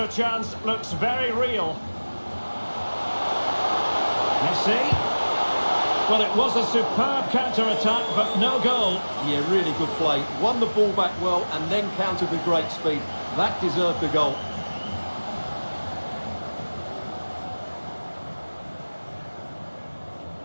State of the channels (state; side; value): inverted; both; correlation -1.00